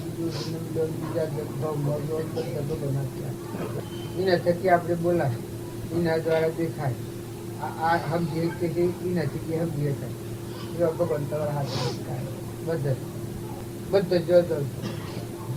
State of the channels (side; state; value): both; identical; correlation 1.00